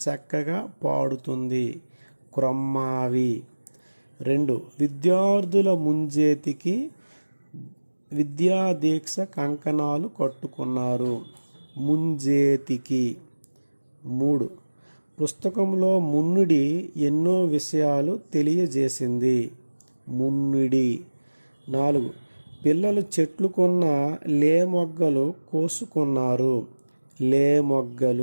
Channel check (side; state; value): both; inverted; correlation -1.00